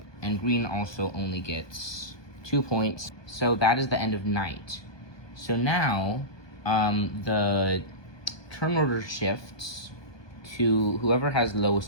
And Green also only gets 2 points. So that is the end of night. So now the turn order shifts to whoever has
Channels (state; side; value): late; right; 1.2 ms